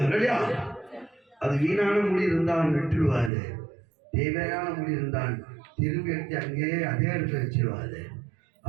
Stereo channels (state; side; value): drops out; left; at 3.3 s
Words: இல்லையா? அது வீணான முடி இருந்தால் நட்டுடுவாரு, தேவையான முடி இருந்தால் திரும்பி எடுத்து அங்கேயே அதே இடத்துல வச்சிருவாரு.